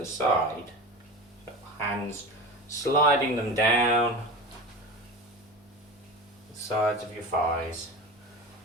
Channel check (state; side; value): normal; both; correlation 0.30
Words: side. So hands sliding them down the sides of your thighs.